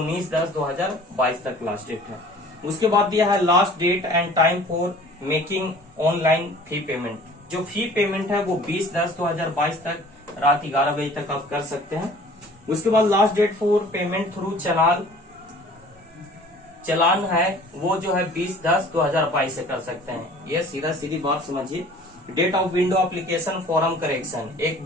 तक लास्ट डेट है। उसके बाद दिया है last date and time for making online fee payment. जो फी पेमेंट है वो 20/10/2022 तक रात 11 बजे तक आप कर सकते हैं। उसके बाद last date for payment through challan है वो जो है 20/10/2022 से कर सकते हैं। ये सीधा सीधी बात समझिए। Date of window application form correction, एक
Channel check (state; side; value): normal; both; correlation 0.48